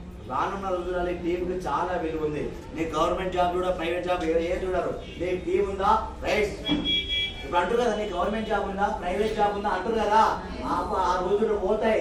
రానున్న రోజులలో టీం కి చాలా విలువ ఉంది. నీ గవర్నమెంట్ జాబ్ చూడ, ప్రైవేట్ జాబ్ ఏ చూడరు. నీకు టీం ఉందా? రైట్. ఇప్పుడు అంటారు కదా, నీ గవర్నమెంట్ జాబ్ ఉందా, ప్రైవేట్ జాబ్ ఉందా అంటారు కదా. ఆ రోజులు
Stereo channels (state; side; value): identical; both; correlation 1.00